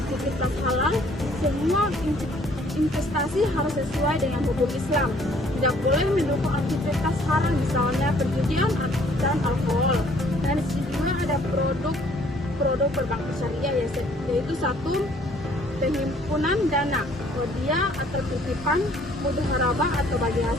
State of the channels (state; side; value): normal; both; correlation 0.60